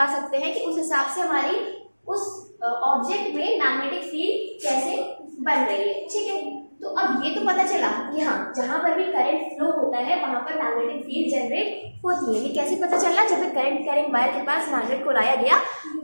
सकते हैं कि उस हिसाब से हमारी उस ऑब्जेक्ट में मैग्नेटिक फील्ड कैसे बन रही है। ठीक है, तो अब ये तो पता चला कि हाँ, जहां पर भी करंट फ्लो होता है वहां पर मैग्नेटिक फील्ड जनरेट होती है। ये कैसे पता चला, जब करंट कैरिंग वायर के पास मैग्नेट को लाया गया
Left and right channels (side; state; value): both; inverted; correlation -1.00